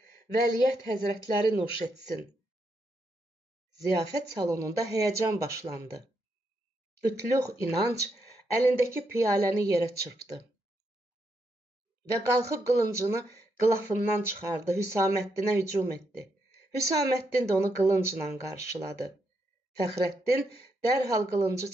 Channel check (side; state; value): both; normal; correlation 0.80